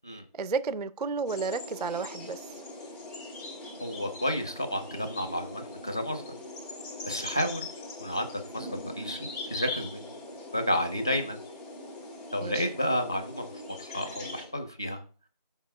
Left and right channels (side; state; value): both; inverted; correlation -0.50